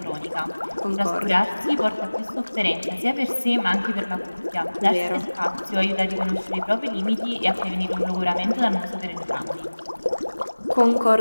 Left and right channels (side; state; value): both; inverted; correlation -1.00